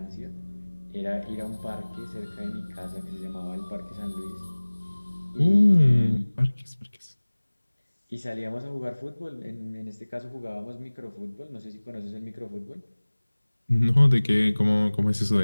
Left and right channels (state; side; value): inverted; both; correlation -1.00